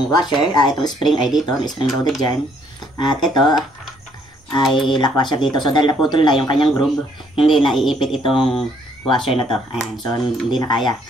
washer, itong spring ay dito, spring loaded dyan. At ito ay lock washer dito. So dahil naputol na yung kanyang groove, hindi na iipit itong washer na to. Ayan, so hindi na kaya.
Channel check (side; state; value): both; normal; correlation 0.66